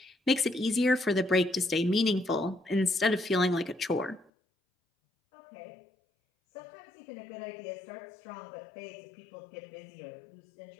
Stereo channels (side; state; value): right; drops out; at 4.3 s